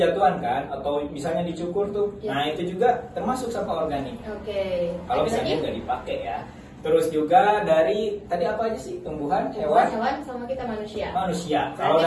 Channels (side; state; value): both; identical; correlation 1.00